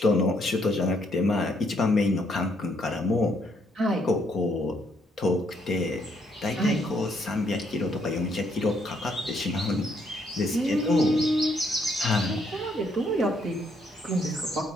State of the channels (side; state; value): both; normal; correlation 0.71